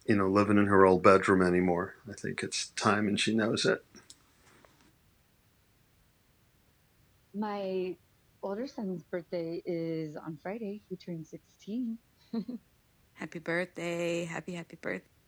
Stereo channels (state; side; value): identical; both; correlation 1.00